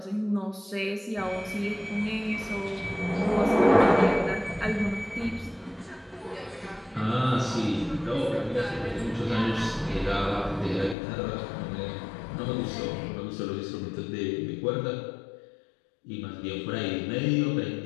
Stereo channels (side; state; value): right; drops out; at 11.0 s